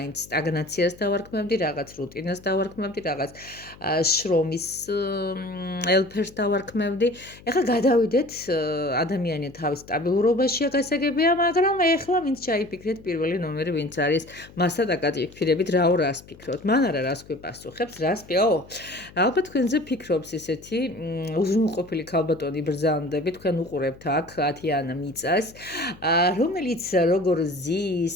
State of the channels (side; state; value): left; noise; hum, 22 dB below the sound